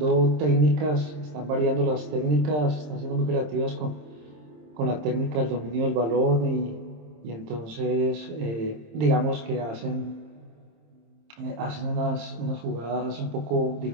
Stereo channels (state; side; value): late; left; 27 ms